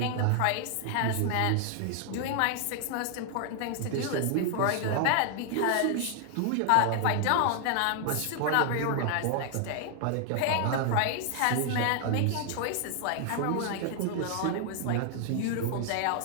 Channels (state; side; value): different; both; correlation 0.00